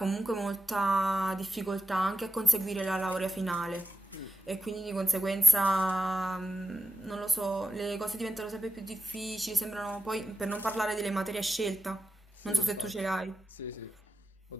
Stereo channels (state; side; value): normal; both; correlation 0.91